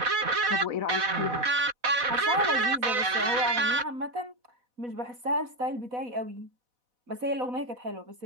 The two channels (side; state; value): left; late; 4.1 ms